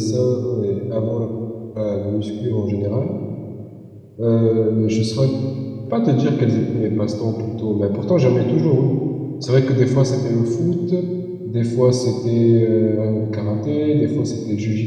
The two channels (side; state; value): both; identical; correlation 1.00